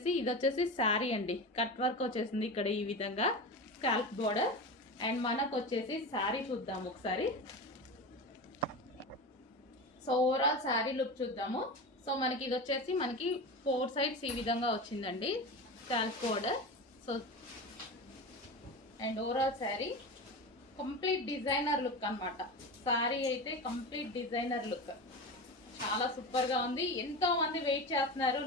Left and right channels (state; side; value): normal; both; correlation 0.26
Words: ఇది వచ్చేసి శారీ అండి. కట్ వర్క్ వచ్చేసింది ఇక్కడ ఈ విధంగా, స్కాల్ప్ బోర్డర్. అండ్ మనకు వచ్చేసి శారీ చూద్దాము ఒకసారి. సో ఓవరాల్ శారీ లుక్ చూద్దాము. సో మనకి ఇది వచ్చేసి మనకి 4 సైడ్స్ ఈ విధంగా వచ్చిందండి scalp border. So and overall sari complete designer look అనమాట. శారీ అయితే కంప్లీట్ డిజైనర్ లుక్, చాలా సూపర్ గా ఉంది. ఎంతో మంది వెయిట్ చేస్తున్నారు,